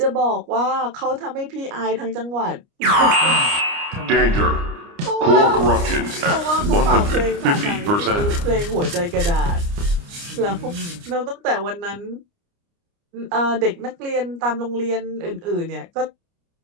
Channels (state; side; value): late; left; 29 ms